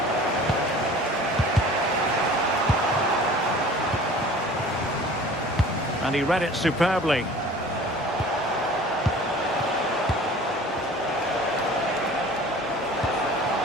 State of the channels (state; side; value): normal; both; correlation 0.45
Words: And he read it superbly.